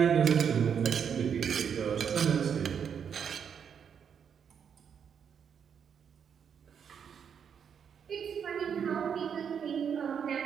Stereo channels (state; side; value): quieter; left; 7.5 dB